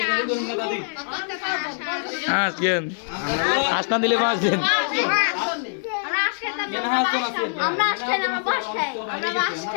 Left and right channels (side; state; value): right; silent; digital silence